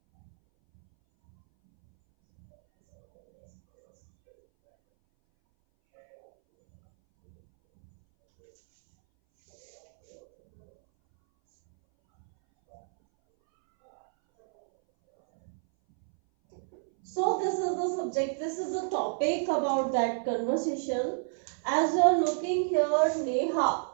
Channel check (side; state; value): left; silent; 58 dB below the other